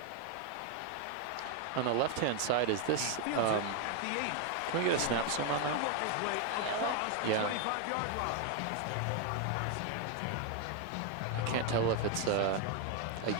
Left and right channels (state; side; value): different; both; correlation 0.00